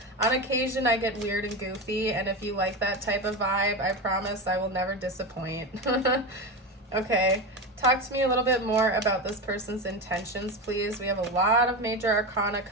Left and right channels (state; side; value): normal; both; correlation 0.20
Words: On occasion, I get weird and goofy, and if you like that type of vibe, I promise I will never disappoint. Okay, talk to me a little bit more about this person's intentions, please. We have a lot of major arcana